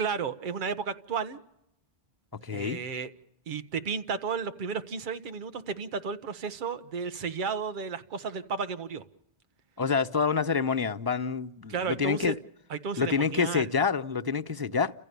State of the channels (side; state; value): left; late; 1.0 ms